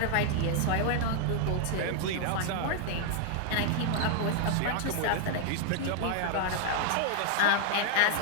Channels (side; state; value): both; different; correlation 0.00